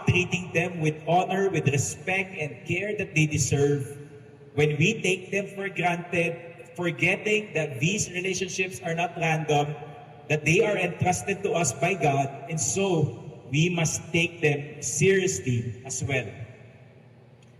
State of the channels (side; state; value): both; identical; correlation 1.00